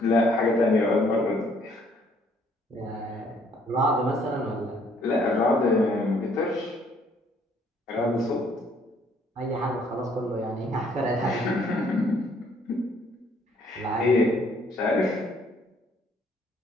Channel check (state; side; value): normal; both; correlation 0.64